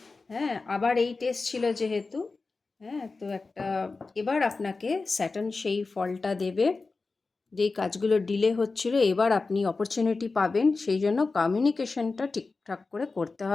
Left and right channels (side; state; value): right; quieter; 3.9 dB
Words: হ্যাঁ, আবার এই টেস্ট ছিল যেহেতু, হ্যাঁ, তো একটা এবার আপনাকে স্যাটার্ন সেই ফলটা দেবে। যেই কাজগুলো ডিলে হচ্ছিল, এবার আপনি অপরচুনিটি পাবেন, সেই জন্য কমিউনিকেশনটা ঠিকঠাক করে করতে